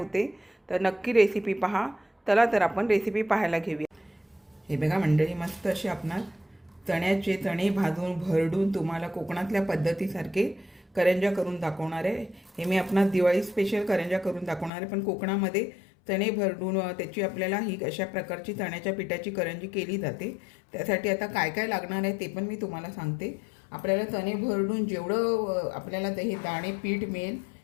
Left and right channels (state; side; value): drops out; right; at 14.7 s